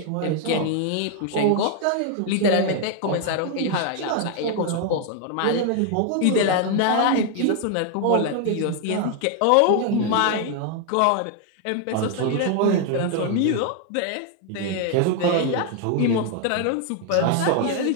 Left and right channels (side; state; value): both; different; correlation 0.00